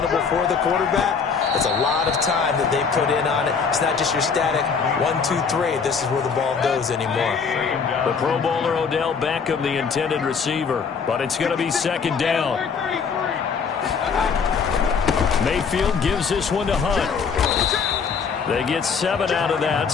for the quarterback. It's a lot of time that they put in on it. It's not just your static 1, 2, 3. This is where the ball goes anymore. The Pro Bowler Odell Beckham, the intended receiver, but it's going to be second down. Mayfield gives this one to Hunt. They get 7 out of that,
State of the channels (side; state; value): right; quieter; 5.8 dB